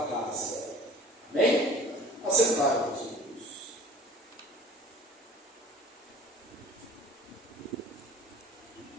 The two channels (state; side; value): normal; both; correlation 0.46